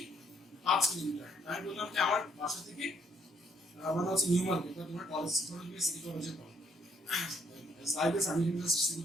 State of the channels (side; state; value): both; normal; correlation 0.69